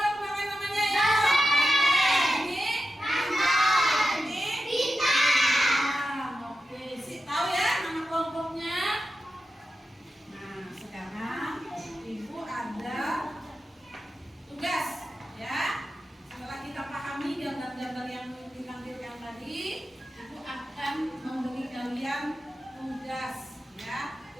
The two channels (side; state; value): both; normal; correlation 0.91